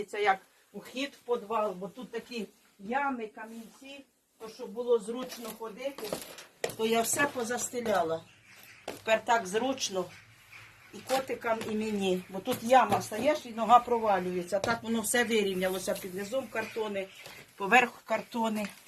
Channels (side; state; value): both; identical; correlation 1.00